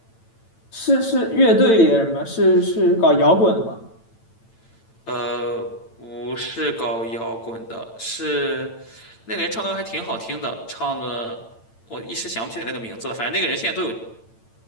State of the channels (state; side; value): late; right; 8.9 ms